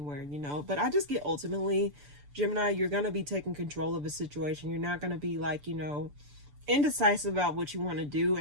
you know. But I just get ultimately, Gemini, you're going to be taking control of a situation. You're not going to be like, you know, indecisive about what you want to do.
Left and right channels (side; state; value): left; late; 6.9 ms